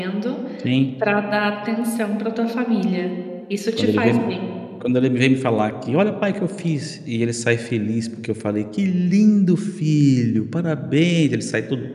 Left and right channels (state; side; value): identical; both; correlation 1.00